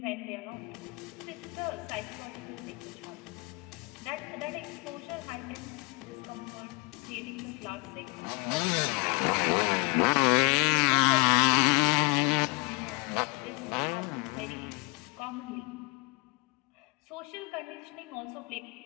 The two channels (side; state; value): right; quieter; 29.5 dB